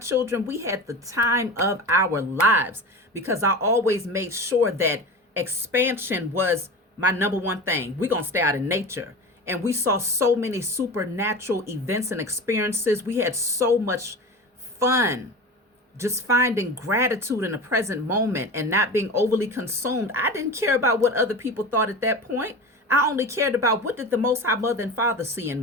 we had the time of our lives, because I always made sure that expansion was my number one thing. We're going to stay out in nature. And we saw so many supernatural events and experiences. We had so much fun just finding gratitude in the present moment and not being overly consumed. I didn't care about what other people thought at that point. I only cared about, what did the Most High Mother and Father see in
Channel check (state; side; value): normal; both; correlation 0.30